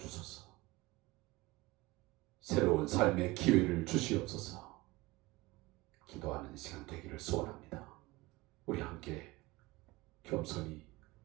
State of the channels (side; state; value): left; quieter; 21.0 dB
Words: 새로운 삶의 기회를 주시옵소서 기도하는 시간 되기를 소원합니다. 우리 함께 겸손히